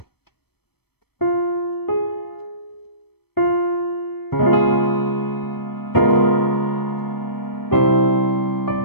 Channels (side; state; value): right; late; 0.97 ms